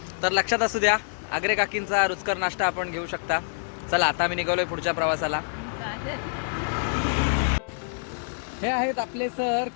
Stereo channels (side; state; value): right; silent; digital silence